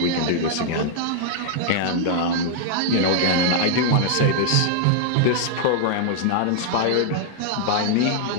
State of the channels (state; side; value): different; both; correlation -0.01